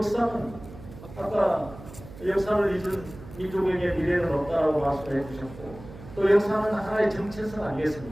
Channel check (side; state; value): right; noise; hum, 16 dB below the sound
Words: 아까 역사를 잊은 민족에게 미래는 없다라고 말씀을 해주셨고 또 역사는 하나의 정체성